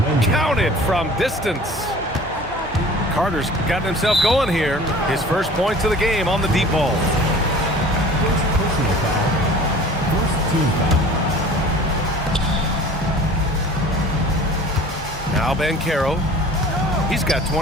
Counted from distance. Carter's gotten himself going here. His first points of the game on the deep ball. First personal foul. First team foul. Now Banchero. He's got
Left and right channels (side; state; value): both; normal; correlation 0.44